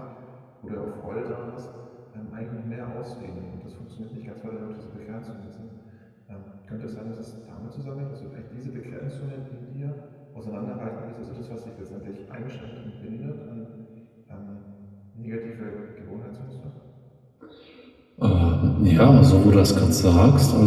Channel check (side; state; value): both; identical; correlation 1.00